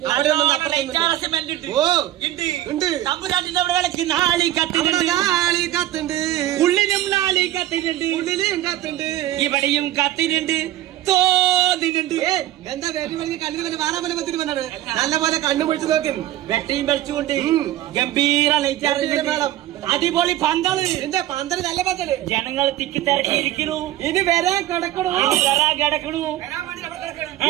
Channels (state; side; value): quieter; left; 14.1 dB